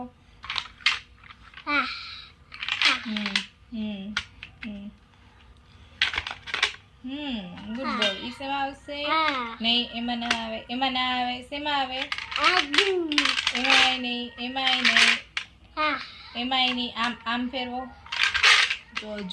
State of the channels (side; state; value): both; identical; correlation 1.00